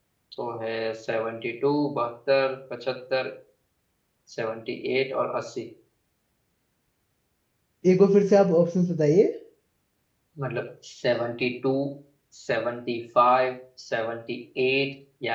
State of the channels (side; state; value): both; identical; correlation 1.00